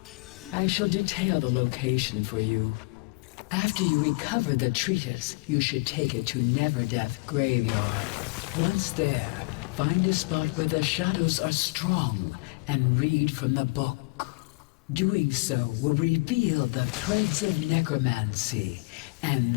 I shall detail the location for you. After you recover the treatise, you should take it to Neverdeath Graveyard. Once there, find a spot where the shadows are strong and read from the book. Doing so will reveal the threads of necromancy and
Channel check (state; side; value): quieter; right; 27.8 dB